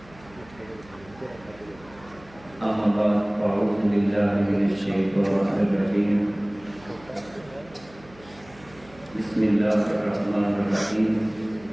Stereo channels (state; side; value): noise; right; hum, 24 dB below the sound